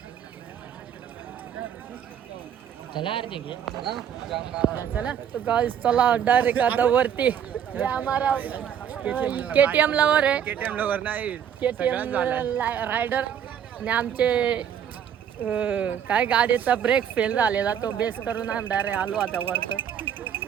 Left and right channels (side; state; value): left; quieter; 8.9 dB